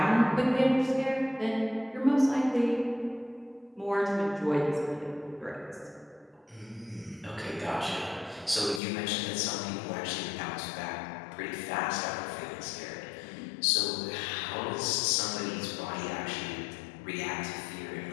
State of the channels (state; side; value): drops out; right; at 8.8 s